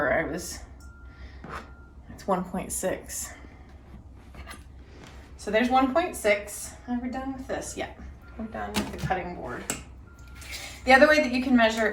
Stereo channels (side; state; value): both; identical; correlation 1.00